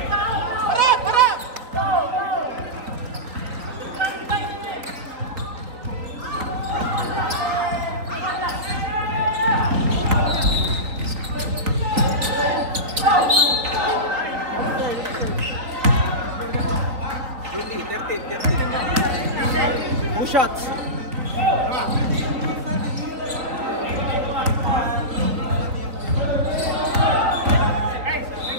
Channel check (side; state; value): left; late; 3.9 ms